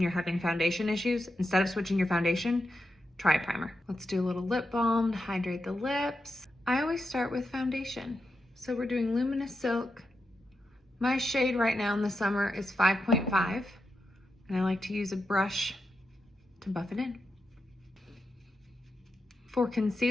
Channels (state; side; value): normal; both; correlation 0.87